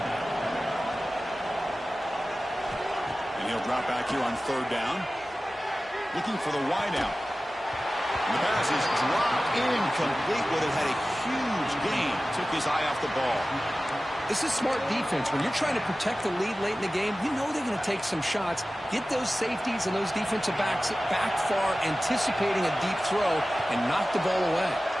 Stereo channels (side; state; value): both; normal; correlation 0.96